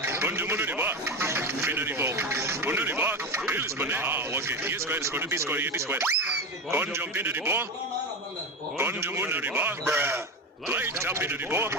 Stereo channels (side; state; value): both; normal; correlation 0.21